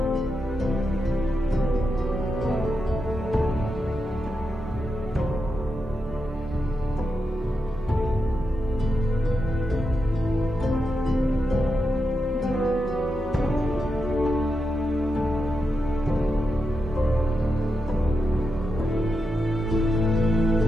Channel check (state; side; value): normal; both; correlation 0.87